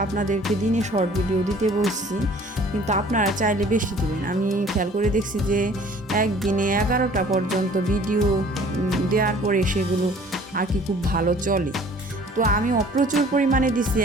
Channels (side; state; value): both; normal; correlation 0.52